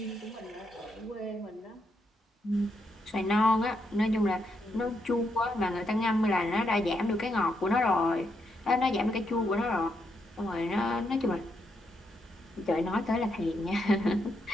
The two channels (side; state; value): both; normal; correlation 0.80